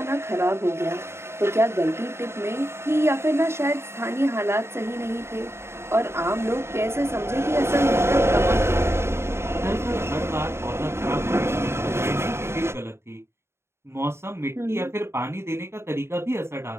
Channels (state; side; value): late; left; 0.12 ms